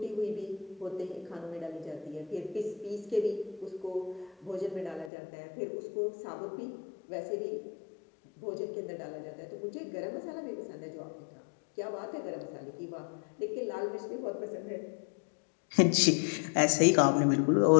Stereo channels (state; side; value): drops out; right; at 5.1 s